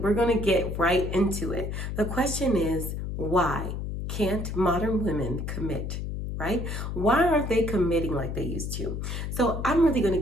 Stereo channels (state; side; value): noise; left; hum, 4 dB below the sound